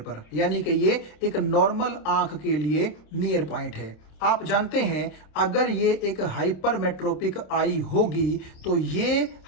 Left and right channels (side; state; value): right; late; 26 ms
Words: यानी कि ये एक नॉर्मल आंख के लिए नियर पॉइंट है। आप जानते हैं अगर ये एक हाइपरमेट्रोपिक आई होगी तो ये